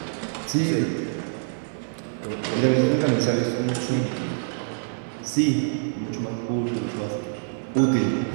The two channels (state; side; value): silent; left; digital silence